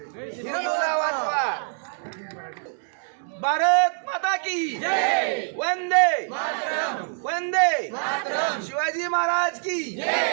हिंदूला वाचवा। भारत माता की जय। वंदे वंदे शिवाजी महाराज की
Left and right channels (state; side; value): silent; left; 56 dB below the other